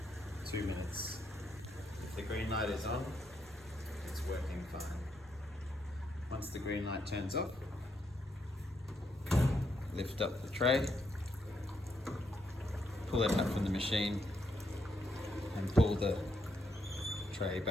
2 minutes. If the green light is on, it's working fine. Once the green light turns off, lift up the tray, pull it up from the machine and pull the tray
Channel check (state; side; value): normal; both; correlation 0.78